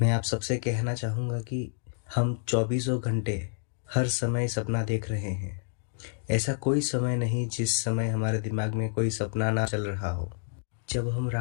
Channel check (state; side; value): silent; right; digital silence